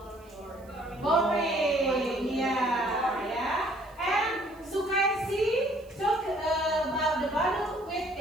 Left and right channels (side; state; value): right; noise; hiss, 29 dB below the sound